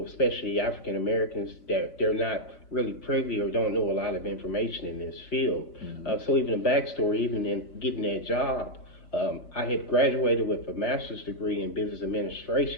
especially African Americans, that they're not really privy or don't know a lot of information in this field. So even a backstory, even in getting that job, I had graduated with a master's degree in business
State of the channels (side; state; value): right; late; 5.1 ms